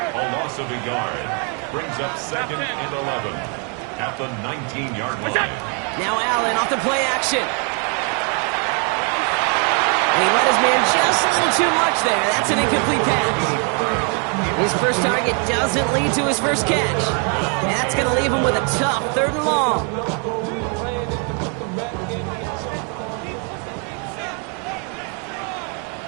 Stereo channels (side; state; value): left; quieter; 38.2 dB